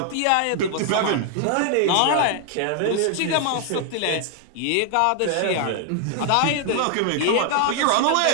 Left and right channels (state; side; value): different; both; correlation 0.00